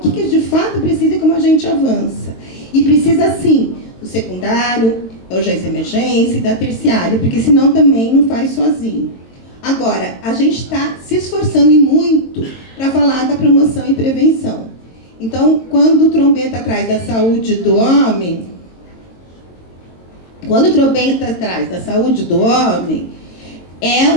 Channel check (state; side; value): late; right; 22 ms